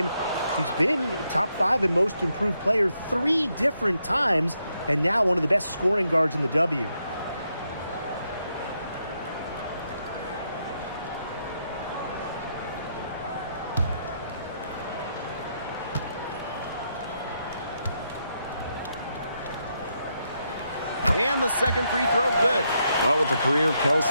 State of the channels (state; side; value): inverted; both; correlation -0.79